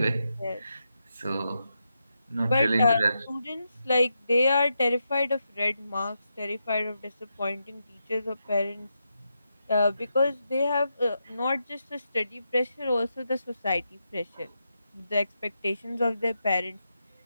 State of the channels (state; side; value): inverted; both; correlation -0.85